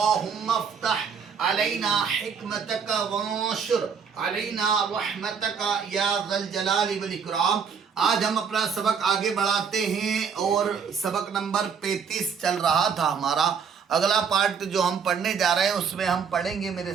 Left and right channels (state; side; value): quieter; left; 6.5 dB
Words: افتح علينا حكمتك وانشر علينا رحمتك يا ذا الجلال والإكرام۔ آج ہم اپنا سبق آگے بڑھاتے ہیں اور سبق نمبر 35 چل رہا تھا ہمارا۔ اگلا پارٹ جو ہم پڑھنے جا رہے ہیں اس میں ہم پڑھیں گے، میرے